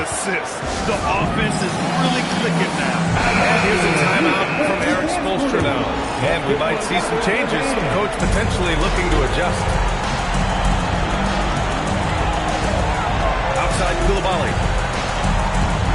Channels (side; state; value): both; identical; correlation 1.00